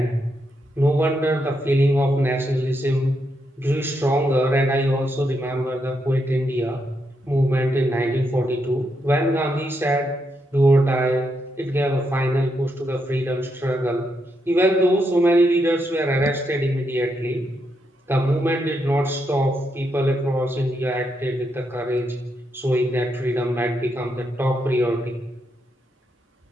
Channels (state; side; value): normal; both; correlation 0.81